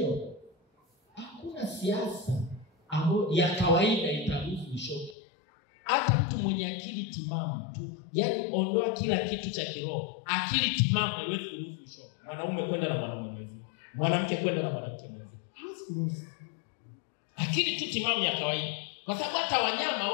Hakuna siasa ambayo ya kawaida itaruhusu ushoga. Hata mtu mwenye akili timamu tu, yani ondoa kila kitu cha kiroho, akili timamu haiwezi kuruhusu ushoga. Mwanaume kwenda na mwanaume mwenzie, mwanamke kwenda na mwanamke mwenzie. Haiwezi kuruhusu. Akili tu timamu ya kawaida. Kwa sababu hata wanyama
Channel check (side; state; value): right; drops out; at 5.2 s